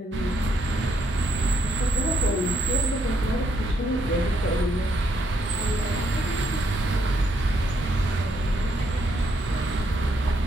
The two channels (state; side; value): normal; both; correlation 0.75